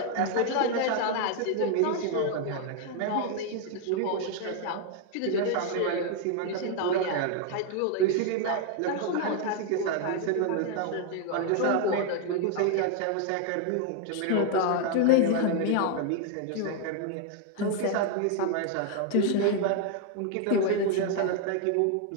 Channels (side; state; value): both; different; correlation 0.00